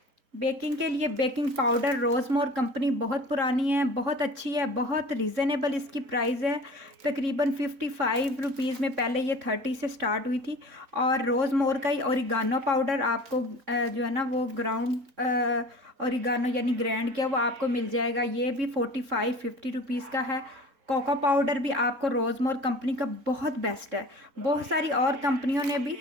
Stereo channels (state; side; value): late; left; 3.6 ms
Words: बेकिंग के लिए बेकिंग पाउडर, रोज़मोर कंपनी बहुत पुरानी है, बहुत अच्छी है, बहुत रीज़नेबल इसकी प्राइस है। तकरीबन 55 रुपीज़ में, पहले ये 30 से स्टार्ट हुई थी। और रोज़मोर का ही ओरिगानो पाउडर आपको जो है ना वो ग्राउंड ओरिगानो यानी ग्राइंड किया वो आपको मिल जाएगा, ये भी 45-50 रुपीज़ का है। कोको पाउडर भी आपको रोज़मोर कंपनी का बहुत बेस्ट है, बहुत सारी और कंपनियों ने भी